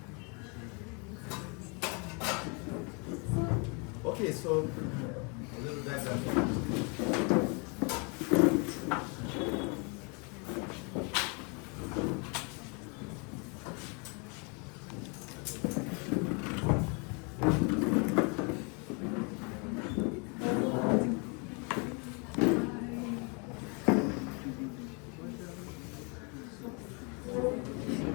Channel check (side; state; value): right; quieter; 33.4 dB